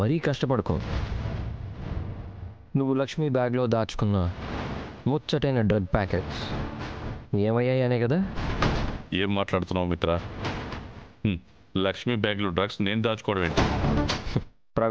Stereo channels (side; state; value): both; identical; correlation 1.00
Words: కష్టపడుకో. నువ్వు లక్ష్మి బ్యాగ్లో దాచుకున్న ముచ్చటైన డ్రగ్ ప్యాకెట్స్ ఏమయ్యాయి అనే కదా. ఏం మాట్లాడుతున్నావు మిత్ర? లక్ష్మి బ్యాగ్లో డ్రగ్స్ నేను దాచుకోవడం ఏంటి?